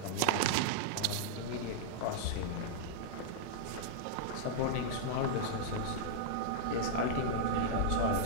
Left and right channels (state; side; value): different; both; correlation -0.01